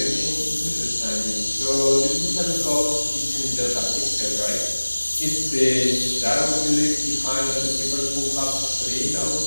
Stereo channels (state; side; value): inverted; both; correlation -1.00